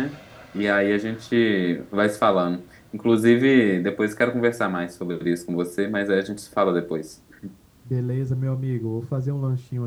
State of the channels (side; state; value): both; identical; correlation 1.00